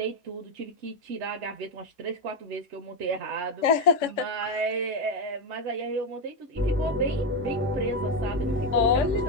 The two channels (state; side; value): normal; both; correlation 0.08